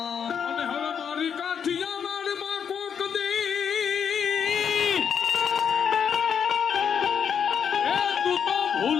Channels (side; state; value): right; quieter; 7.5 dB